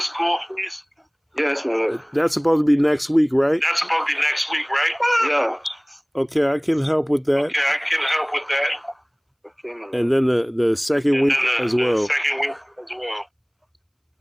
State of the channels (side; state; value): both; identical; correlation 1.00